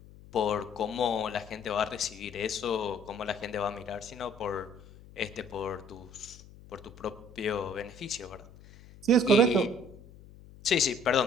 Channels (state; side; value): noise; left; hum, 20 dB below the sound